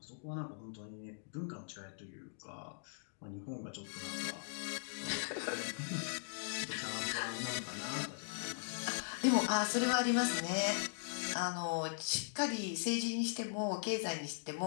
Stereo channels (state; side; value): silent; right; digital silence